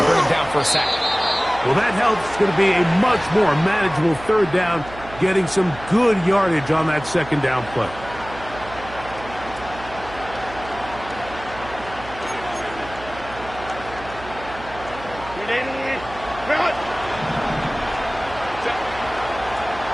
him down for a sack. Well, that helps. It's going to be a much more manageable third down, getting some good yardage on that second down play.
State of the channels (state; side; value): noise; right; hum, 15 dB below the sound